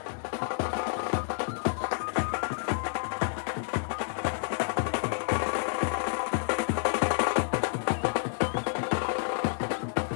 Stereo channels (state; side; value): silent; right; digital silence